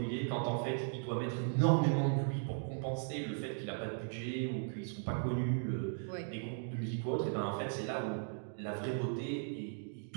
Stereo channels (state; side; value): silent; left; digital silence